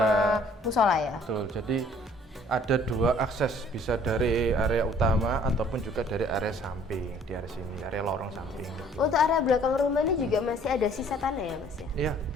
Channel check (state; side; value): normal; both; correlation 0.57